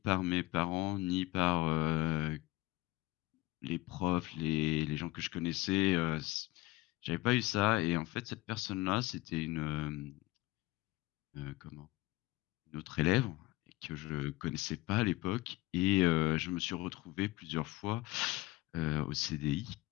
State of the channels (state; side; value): quieter; right; 19.7 dB